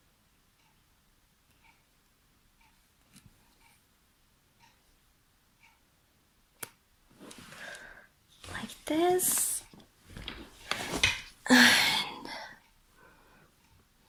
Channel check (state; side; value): identical; both; correlation 1.00